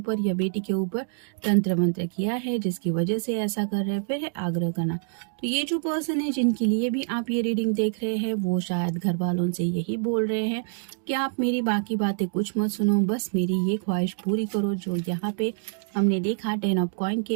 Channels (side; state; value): left; silent; digital silence